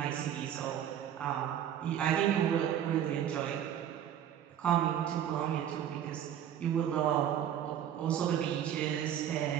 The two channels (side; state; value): left; quieter; 10.1 dB